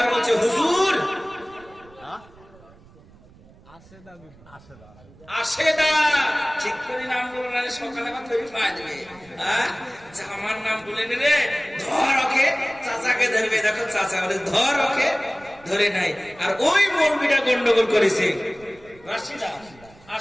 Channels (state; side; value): noise; right; rumble, 25 dB below the sound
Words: বলছে হুজুর আশেদা, ঠিক করে নাম বলো না, সকালে আমার তৈরি পাওয়া যাবে। আমার নাম বলে নিলে ধর ওকে, চাচাকে ধরবে। দেখো চাচা বলে ধর ওকে, ধরে নাই। আর ওই মৌলবীটা গন্ডগোল করেছে